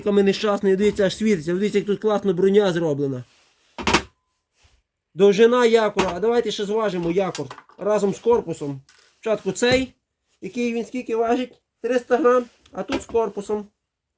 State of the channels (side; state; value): both; identical; correlation 1.00